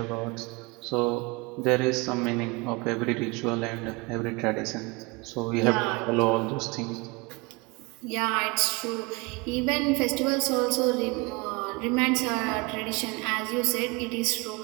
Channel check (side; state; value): left; quieter; 27.0 dB